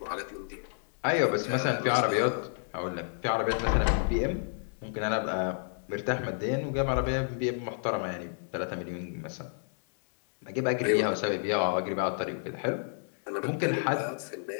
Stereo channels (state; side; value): silent; right; digital silence